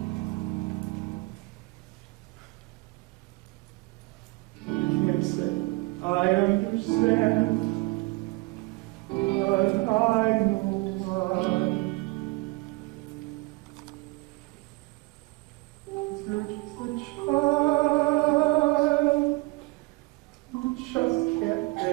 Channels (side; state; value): left; quieter; 24.6 dB